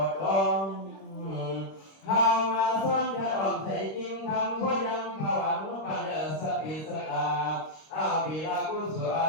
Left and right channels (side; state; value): right; late; 26 ms